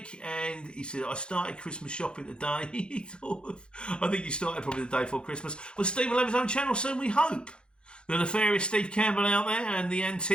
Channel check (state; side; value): late; right; 0.053 ms